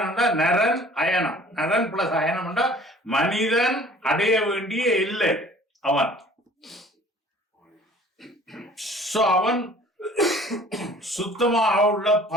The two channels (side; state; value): both; normal; correlation 0.50